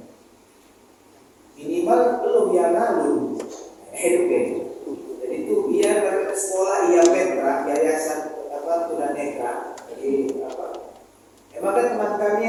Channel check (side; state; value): both; identical; correlation 1.00